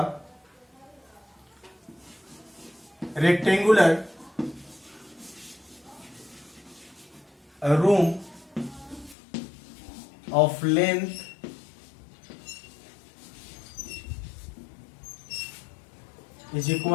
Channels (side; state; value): right; drops out; at 9.2 s